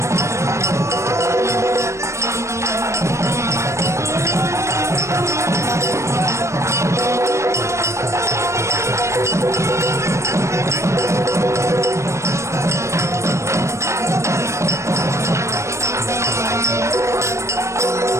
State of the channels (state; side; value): late; left; 0.14 ms